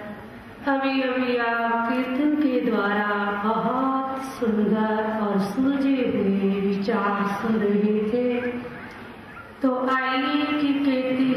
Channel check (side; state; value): both; identical; correlation 1.00